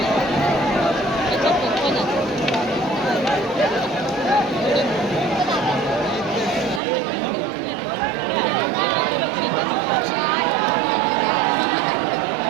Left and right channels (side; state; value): left; drops out; at 6.8 s